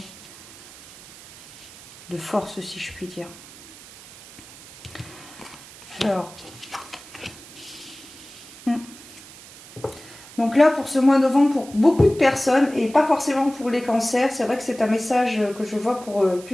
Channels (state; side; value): noise; right; hiss, 19 dB below the sound